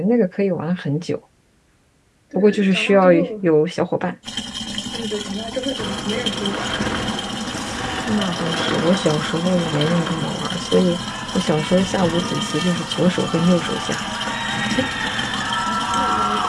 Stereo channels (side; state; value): both; identical; correlation 1.00